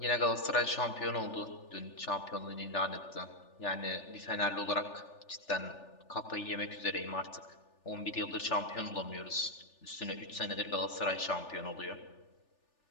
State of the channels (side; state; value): right; late; 3.4 ms